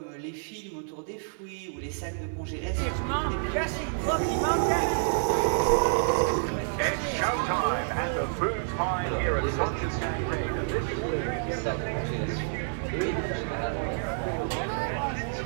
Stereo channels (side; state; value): left; silent; digital silence